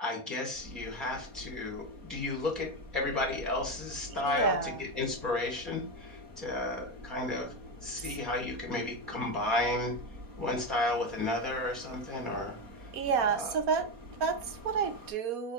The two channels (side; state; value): left; late; 4.2 ms